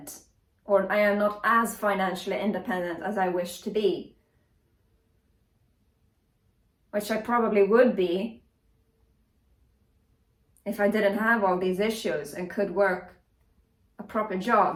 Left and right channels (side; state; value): both; identical; correlation 1.00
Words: or I am not as financially independent as I wish to be, which I probably would be if I didn't have all these issues and could work a proper